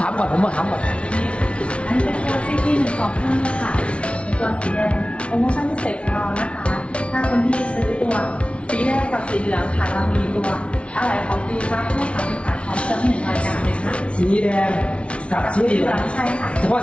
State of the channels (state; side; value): late; right; 0.060 ms